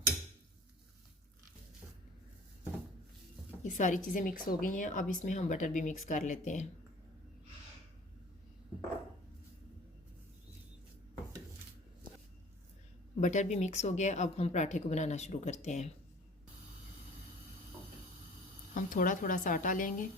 ये सारी चीज़ें मिक्स हो गई हैं। अब इसमें हम बटर भी मिक्स कर लेते हैं। बटर भी मिक्स हो गया। अब हम पराठे को बनाना शुरू करते हैं। हम थोड़ा थोड़ा सा आटा लेंगे,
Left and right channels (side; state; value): both; normal; correlation 0.46